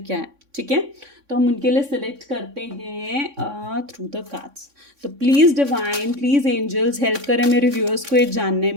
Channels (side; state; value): left; late; 3.6 ms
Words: है, ठीक है। तो हम उनके लिए सिलेक्ट करते हैं थ्रू द कार्ड्स। तो please divine, please angels help करें मेरे व्यूअर्स को ये जानने